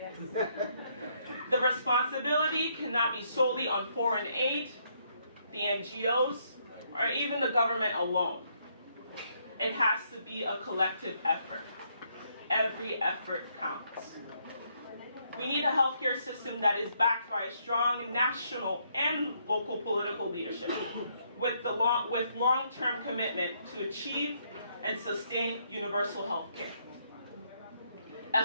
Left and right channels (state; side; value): inverted; both; correlation -0.72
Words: The responsibility cannot be solely on foreign aid, the NGOs, or even the government alone. It has to be a collective effort. Every effort counts. We need a healthcare system that is backed by a strong national and local political leadership with long-term commitment to achieve and sustain universal health care. A